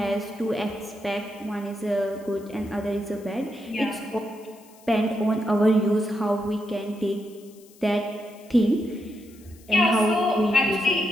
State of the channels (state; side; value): noise; left; hiss, 26 dB below the sound